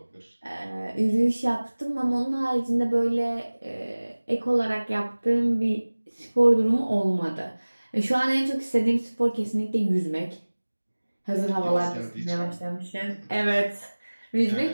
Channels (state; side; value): inverted; both; correlation -1.00